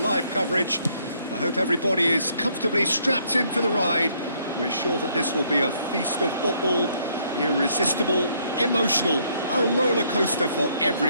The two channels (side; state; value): both; inverted; correlation -0.68